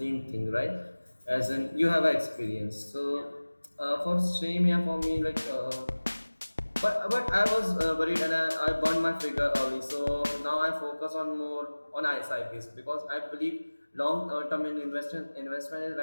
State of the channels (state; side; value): inverted; both; correlation -1.00